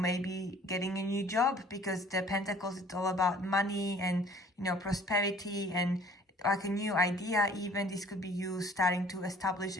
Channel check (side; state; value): both; normal; correlation 0.53